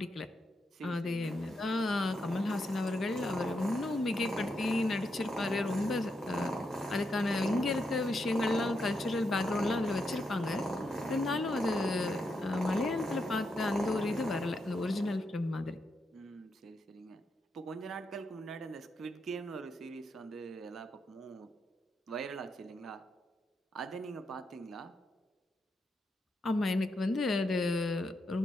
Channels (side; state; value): both; normal; correlation 0.83